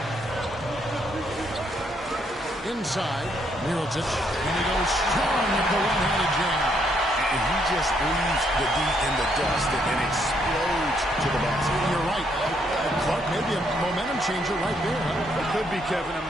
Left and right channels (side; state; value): both; normal; correlation 0.72